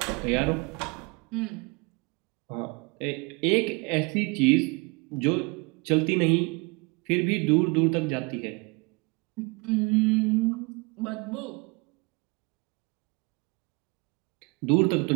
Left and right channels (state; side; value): quieter; left; 28.9 dB